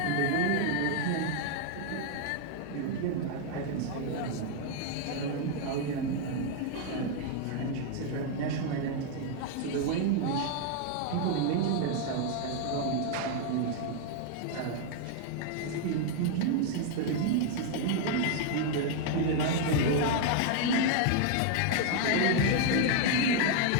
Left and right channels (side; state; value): both; different; correlation 0.00